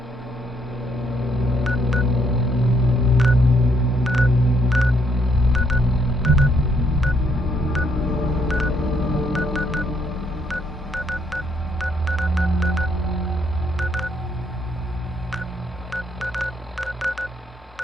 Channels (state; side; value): normal; both; correlation 0.71